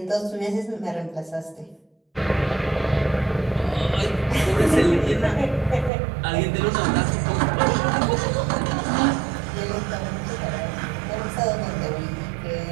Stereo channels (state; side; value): drops out; left; at 5.9 s